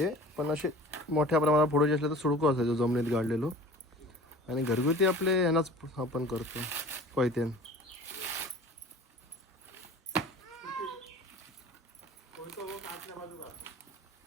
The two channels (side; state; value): both; normal; correlation 0.43